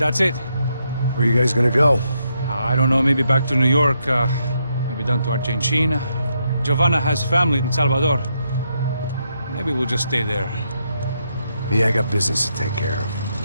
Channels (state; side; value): inverted; both; correlation -0.79